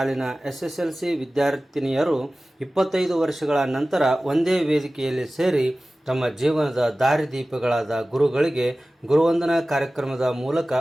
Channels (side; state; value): both; normal; correlation 0.97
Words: SSLC ವಿದ್ಯಾರ್ಥಿನಿಯರು 25 ವರ್ಷಗಳ ನಂತರ ಒಂದೇ ವೇದಿಕೆಯಲ್ಲಿ ಸೇರಿ ತಮ್ಮ ಜೀವನದ ದಾರಿದೀಪಗಳಾದ ಗುರುಗಳಿಗೆ ಗುರುವಂದನಾ ಕಾರ್ಯಕ್ರಮದ ಮೂಲಕ